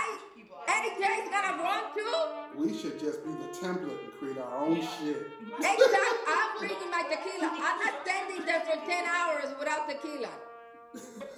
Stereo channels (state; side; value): identical; both; correlation 1.00